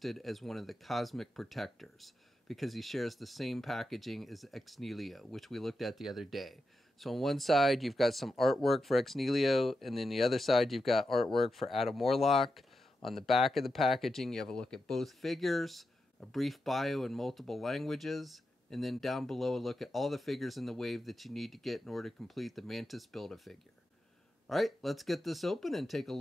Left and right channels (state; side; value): normal; both; correlation 0.88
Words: as one of the Cosmic Protectors because he shares the same packaging as Ex Nihilo, which we looked at the other day. So on one side you've got some artwork for Ex Nihilo, and then the other side you've got artwork for Adam Warlock. On the back of the packaging you have a look at both figures, a brief bio in multiple languages, and then down below a look at all the figures in the wave that you need to get in order to complete the Mantis Build-A-Figure. Alright, let's get this open and take a